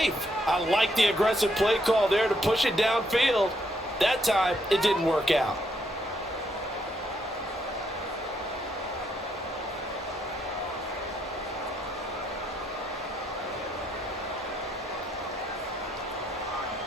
I like the aggressive play call there to push it downfield. That time, it didn't work out.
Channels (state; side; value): normal; both; correlation 0.74